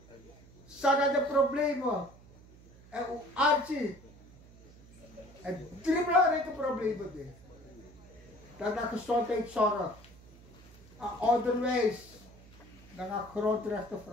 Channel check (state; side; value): noise; right; hum, 22 dB below the sound